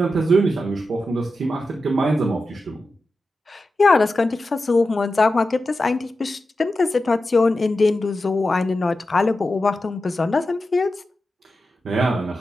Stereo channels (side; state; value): both; normal; correlation 0.91